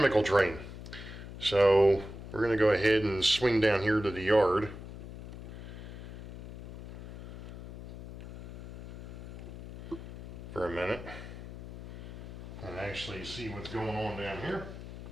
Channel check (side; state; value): left; noise; hum, 12 dB below the sound